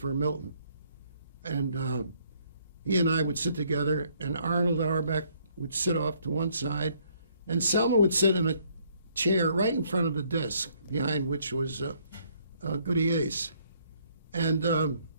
Milton. And he and I would sit together, and Arnold Auerbach would sit off to one side, and Selma would sit in a chair right in front of the desk, behind which was Goody Ace. And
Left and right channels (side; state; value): both; inverted; correlation -0.66